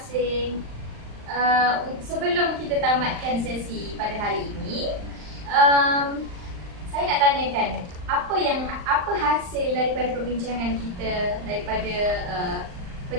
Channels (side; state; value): left; late; 39 ms